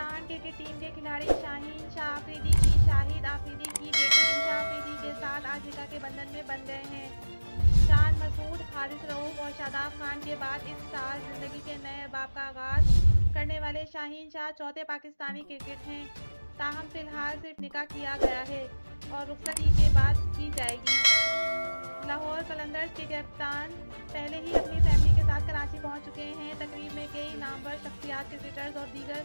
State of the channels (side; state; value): both; inverted; correlation -1.00